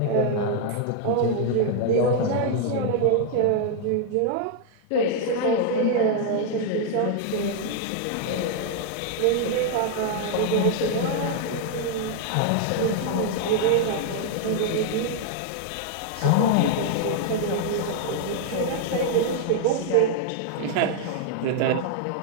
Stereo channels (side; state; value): both; different; correlation 0.00